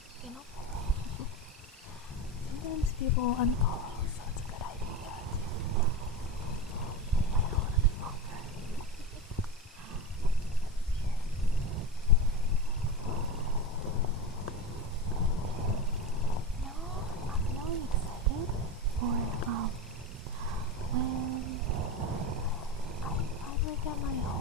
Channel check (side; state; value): both; normal; correlation 0.20